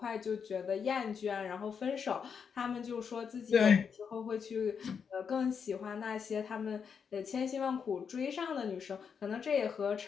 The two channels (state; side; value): quieter; right; 6.6 dB